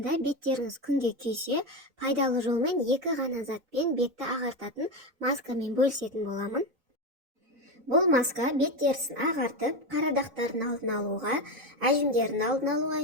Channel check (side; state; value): left; late; 4.0 ms